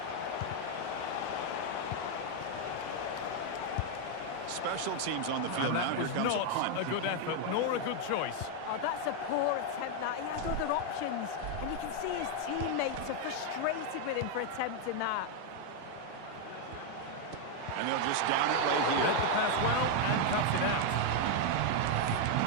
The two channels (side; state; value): both; different; correlation 0.01